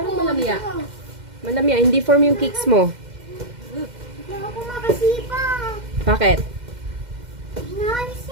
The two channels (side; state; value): left; late; 2.1 ms